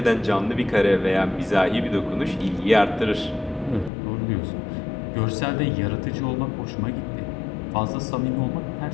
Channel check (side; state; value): right; drops out; at 3.9 s